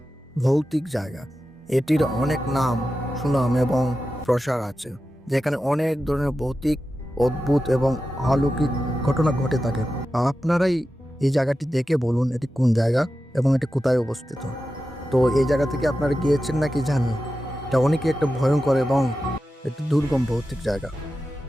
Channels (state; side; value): normal; both; correlation 0.92